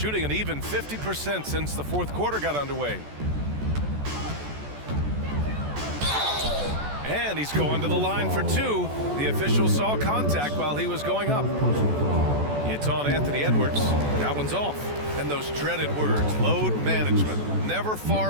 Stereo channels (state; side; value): late; left; 14 ms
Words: an even 50% since the fourth quarter got underway. And he's going to the line for two. The official saw contact while he was going up. It's on Anthony Edwards. That one's off. And those dreaded words, load management, never far